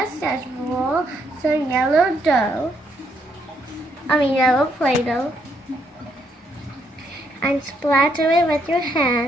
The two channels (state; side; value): normal; both; correlation 0.74